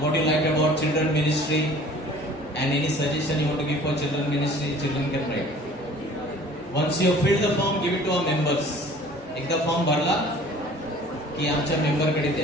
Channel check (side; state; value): both; normal; correlation 0.49